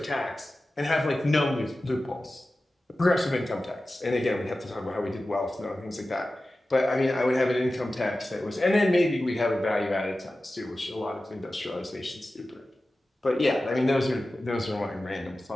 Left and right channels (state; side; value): normal; both; correlation 0.95